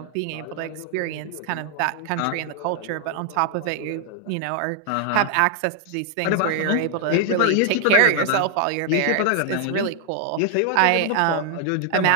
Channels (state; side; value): different; both; correlation 0.00